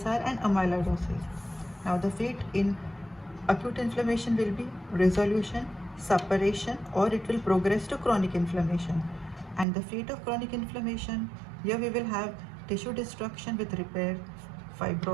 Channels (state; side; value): drops out; left; at 9.7 s